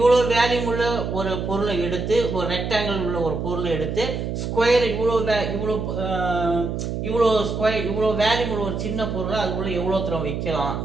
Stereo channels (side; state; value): right; noise; hum, 3 dB below the sound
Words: வேல்யூம் உள்ள ஒரு பொருளை எடுத்து, ஒரு ரெக்டாங்கிள் உள்ள ஒரு பொருளை எடுத்து ஸ்கொயர் இவ்வளோ ஸ்கொயர் இவ்வளோ வேல்யூம் உள்ள ஒரு சின்ன பொருளை அதுக்குள்ள எவ்வளோ தூரம் வைக்கலாம்,